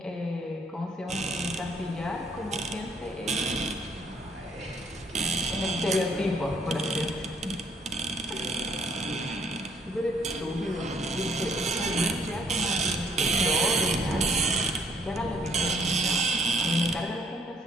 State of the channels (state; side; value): normal; both; correlation 0.66